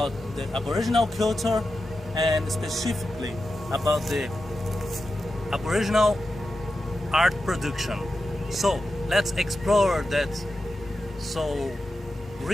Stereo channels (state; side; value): normal; both; correlation 0.91